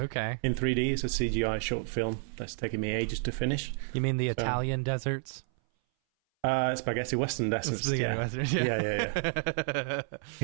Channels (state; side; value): silent; left; 57 dB below the other